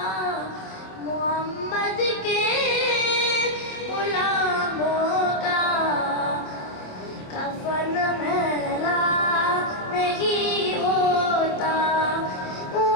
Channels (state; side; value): late; right; 26 ms